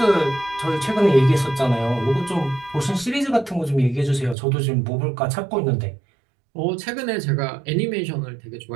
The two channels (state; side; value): drops out; left; at 4.4 s